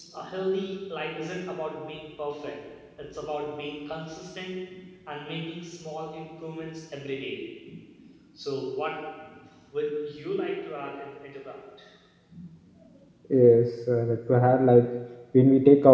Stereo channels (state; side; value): identical; both; correlation 1.00